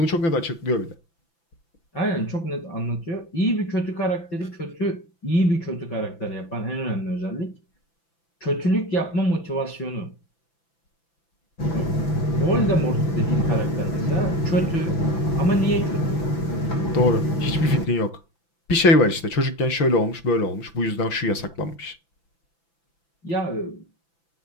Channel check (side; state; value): right; late; 5.9 ms